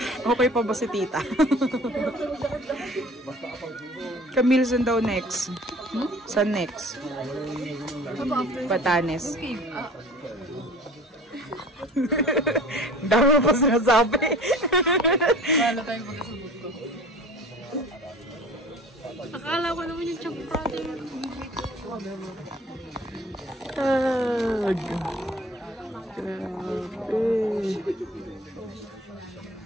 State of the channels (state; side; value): normal; both; correlation 0.45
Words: Okay pa ba si tita? Camille, saan daw next? Saan next? Batanes. Dami mo pa sinasabi. Wala tayong magkasabot ko. Akala ko naman yung chunk Friday. Tag. Grabe.